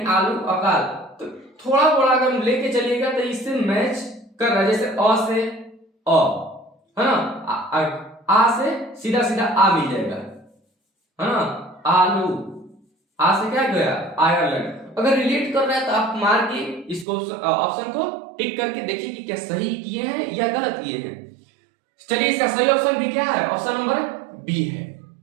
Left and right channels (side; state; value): left; drops out; at 17.1 s